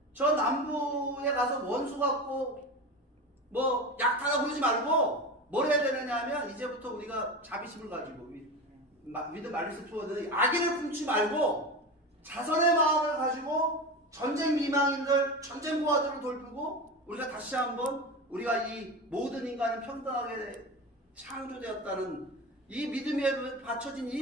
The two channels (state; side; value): normal; both; correlation 0.25